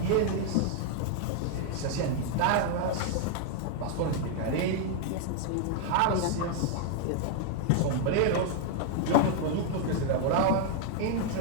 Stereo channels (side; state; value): both; different; correlation 0.00